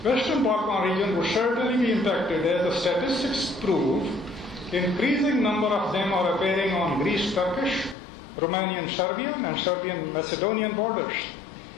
Western Balkan region would certainly be impacted, as the statistics prove. Increasing number of them are appearing on Greece-Turkish, Romanian-Serbian, and Serbian-Macedonian borders.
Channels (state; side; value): drops out; right; at 8.0 s